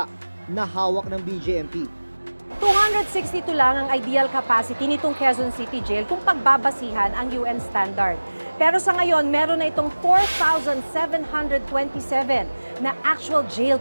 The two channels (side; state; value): both; inverted; correlation -1.00